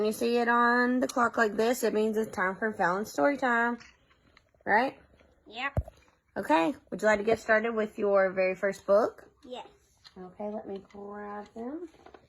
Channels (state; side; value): identical; both; correlation 1.00